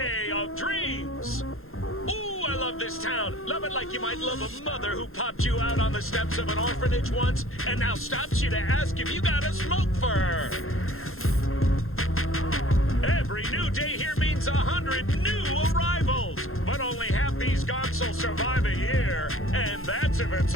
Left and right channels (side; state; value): right; late; 0.61 ms